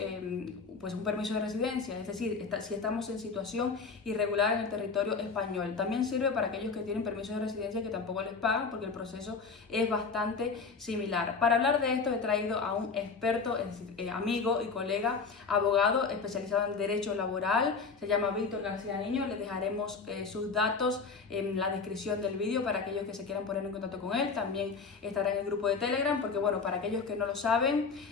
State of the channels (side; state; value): right; quieter; 4.9 dB